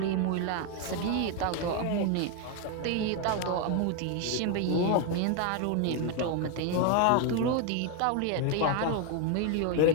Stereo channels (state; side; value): different; both; correlation 0.01